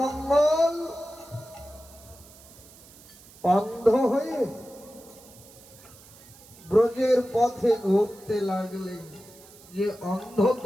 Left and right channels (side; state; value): right; noise; hiss, 22 dB below the sound